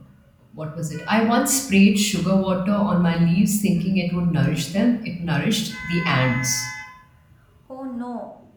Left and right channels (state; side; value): identical; both; correlation 1.00